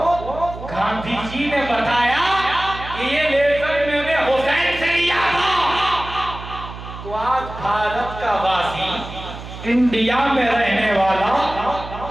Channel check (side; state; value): right; noise; hum, 12 dB below the sound